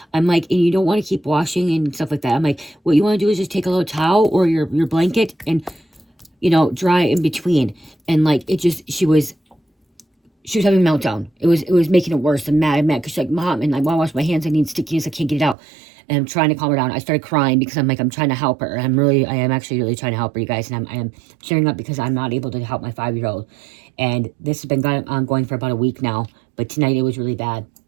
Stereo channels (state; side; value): drops out; left; at 15.6 s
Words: I'm like, and you don't want to keep washing and stuff like that. I'm like, what you want to do is just take a little towel or your blanket and, you know, dry in between. And like, she was having a meltdown. It was making it worse and mad because she's like, Mom, and I want to wash my hands. I need stickiness. I can't get it out. And I'm trying to calm her down. I started crying because I'm like, I'm trying to help her. I am actually really trying to help her, you guys. And I am cheering up because I'm not able to help my 5-year-old. And this has been ongoing for about a week now. But tonight it was really bad.